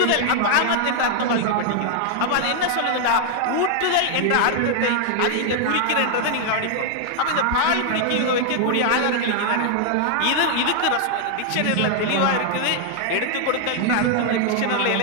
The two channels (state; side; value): different; both; correlation 0.00